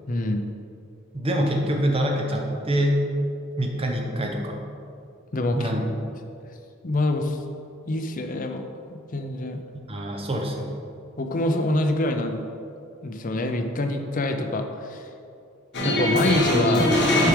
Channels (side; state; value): both; normal; correlation 0.60